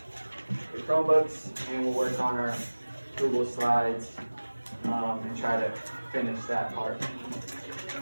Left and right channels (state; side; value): inverted; both; correlation -1.00